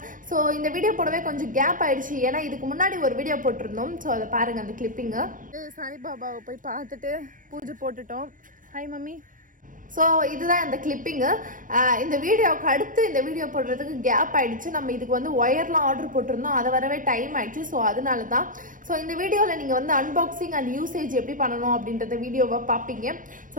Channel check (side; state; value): left; late; 0.39 ms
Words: ஸோ இந்த வீடியோ போடவே கொஞ்சம் கேப் ஆயிடுச்சு, ஏன்னா இதுக்கு முன்னாடி ஒரு வீடியோ போட்டிருந்தோம். ஸோ அதை பாருங்க, அந்த கிளிப்பிங்கு. சாய்பாபாவை போய் பார்த்துட்டு பூஜை போட்டுட்டோம். Hi mummy. ஸோ இதுதான் அந்த கிளிப்பிங்கு. இந்த வீடியோவுக்கு அடுத்து இந்த வீடியோ போடுறதுக்கு கேப் ஆயிடுச்சு. நம்ம இதுக்கு வந்து ஒயர்லாம் ஆர்டர் போட்டிருந்தோம், அதை வரவே டைம் ஆயிடுச்சு. ஸோ அதனால தான். ஸோ இந்த வீடியோவில் நீங்கள் வந்து அன்பாக்சிங் அண்ட் யூசேஜ் எப்படி பண்ணணும் அப்படின்றத வீடியோவை பார்ப்பீங்க.